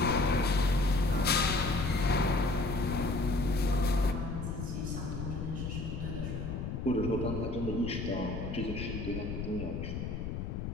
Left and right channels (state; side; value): noise; left; rumble, 4 dB below the sound